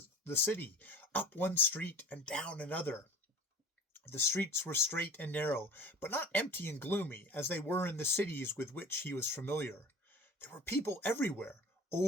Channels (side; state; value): both; normal; correlation 0.40